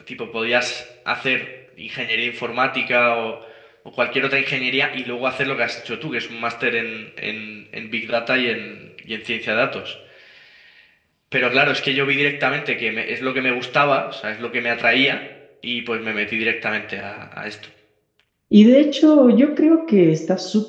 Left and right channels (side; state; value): both; identical; correlation 1.00